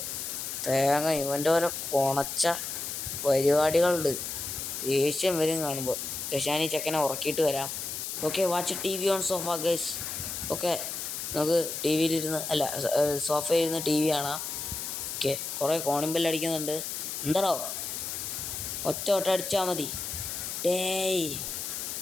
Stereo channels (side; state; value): left; noise; hiss, 5 dB below the sound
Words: തേങ്ങ ഇവൻ്റെ ഓരോ കൊണച്ച പരിപാടികളുണ്ട്. ദേഷ്യം വരും കാണുമ്പോൾ. ഞാൻ ഈ ചെക്കനെ ഉറക്കിയിട്ട് വരാം. Okay, watch TV on sofa guys. Okay, നമുക്ക് സോഫയിലിരുന്ന് TV കാണാം. ഓക്കെ, കുറേ കോണിംഗ് അടിക്കുന്നുണ്ട്. എന്താണോ ഒറ്റ അടിച്ചാൽ മതി. ഡേയ്,